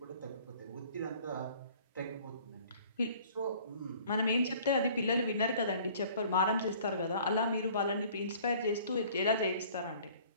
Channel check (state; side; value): inverted; both; correlation -0.52